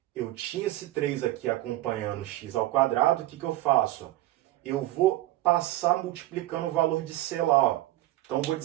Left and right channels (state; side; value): quieter; left; 16.3 dB